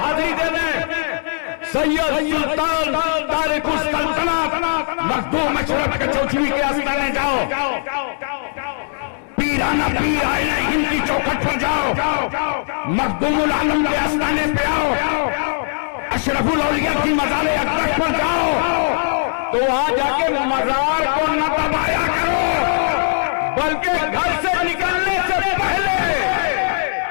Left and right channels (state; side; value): silent; right; digital silence